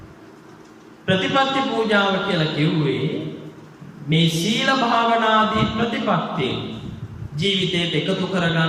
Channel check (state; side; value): identical; both; correlation 1.00